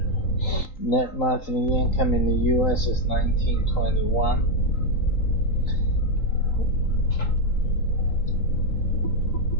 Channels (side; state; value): right; late; 3.8 ms